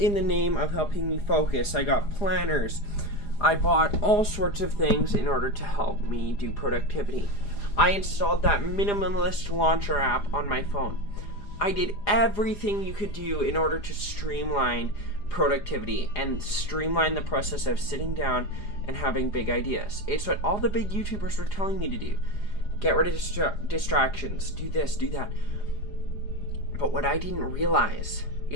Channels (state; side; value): late; right; 4.9 ms